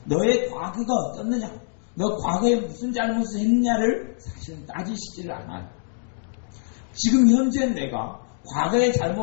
너의 과거가 어떻느냐, 너 과거에 무슨 잘못을 했느냐를 사실은 따지시지를 않아요. 지금 현재 내가 과거의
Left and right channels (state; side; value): silent; right; digital silence